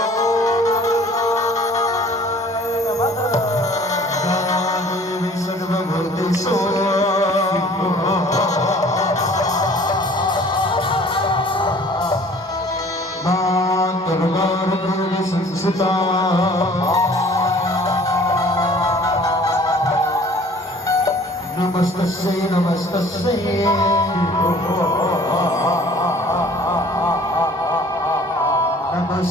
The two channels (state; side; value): normal; both; correlation 0.51